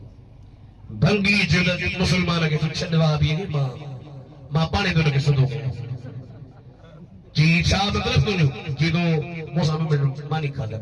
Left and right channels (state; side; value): identical; both; correlation 1.00